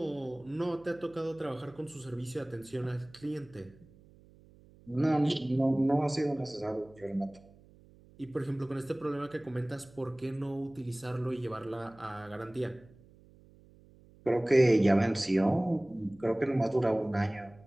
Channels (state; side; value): noise; right; hum, 25 dB below the sound